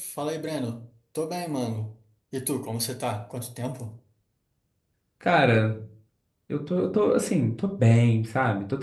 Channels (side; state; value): both; identical; correlation 1.00